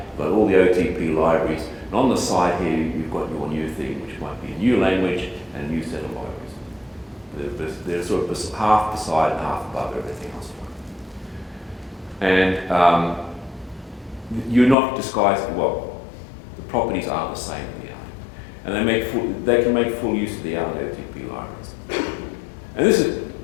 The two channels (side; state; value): right; drops out; at 14.8 s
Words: got all the OTP libraries, and on the side here you've got your new thing, which might be a new language and a new set of libraries. They're sort of half beside and half above everything else. And you're not disguising, well, the properties are the same in the Erlang. And they can make full use of the Erlang OTP libraries. And this is